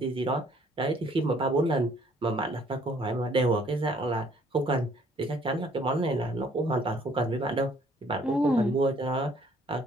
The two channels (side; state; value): both; normal; correlation 0.61